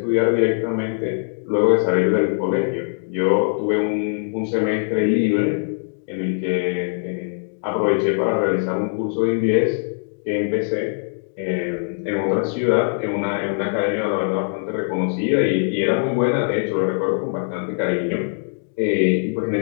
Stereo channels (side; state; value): right; silent; digital silence